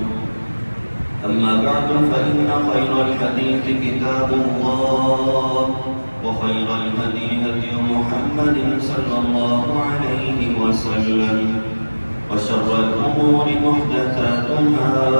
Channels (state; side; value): inverted; both; correlation -1.00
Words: أما بعد فإن خير الحديث كتاب الله وخير الهدي هدي محمد صلى الله عليه وسلم وشر الأمور محدثاتها